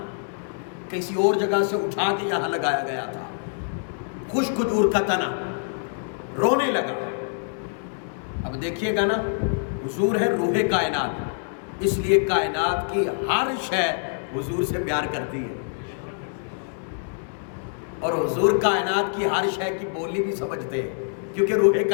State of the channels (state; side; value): silent; right; digital silence